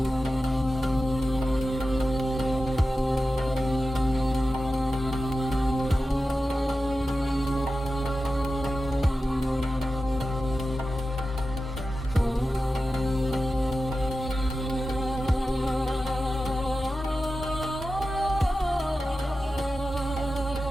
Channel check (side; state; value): both; normal; correlation 0.93